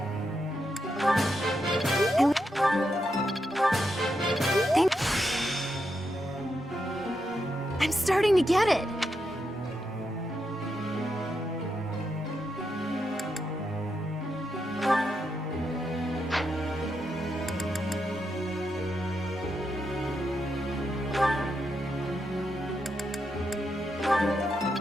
I'm starting to get it.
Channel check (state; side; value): normal; both; correlation 0.83